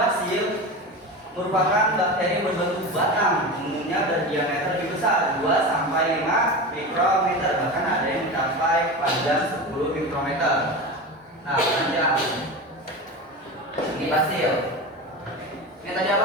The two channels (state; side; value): normal; both; correlation 0.26